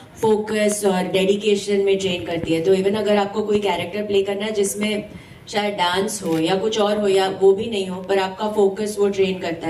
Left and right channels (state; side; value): identical; both; correlation 1.00